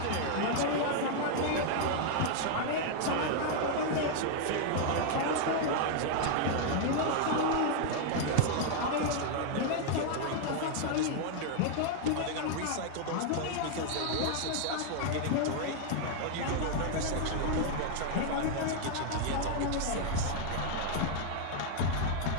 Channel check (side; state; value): both; different; correlation 0.00